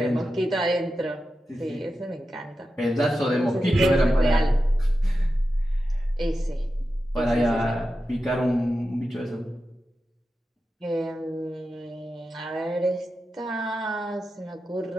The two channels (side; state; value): both; normal; correlation 0.91